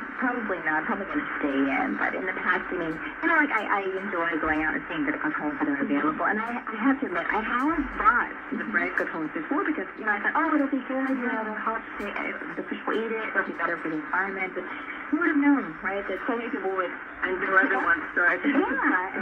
not. Probably going to stay in. But in the past, I enjoy going out and seeing the Krathongs that are available. And I have to admit, I have bought the bread Krathongs before because, I thought, it'll be good. The hot the fish will eat it. It'll be better for the environment. But who would have known, right? That so many people would and do other ones start. Yeah, and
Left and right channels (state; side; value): identical; both; correlation 1.00